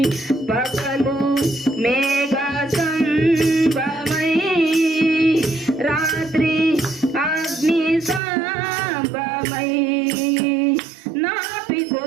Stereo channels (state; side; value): drops out; left; at 8.2 s